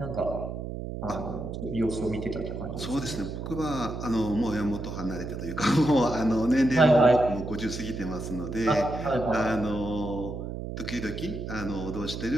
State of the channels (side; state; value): right; noise; hum, 6 dB below the sound